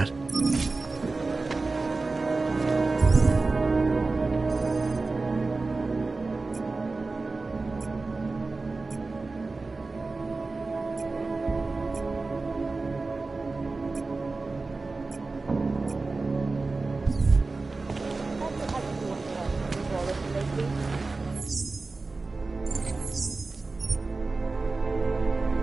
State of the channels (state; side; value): quieter; left; 3.7 dB